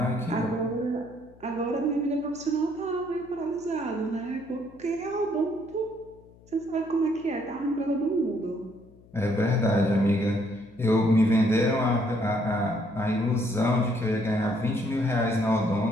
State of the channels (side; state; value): left; noise; hum, 25 dB below the sound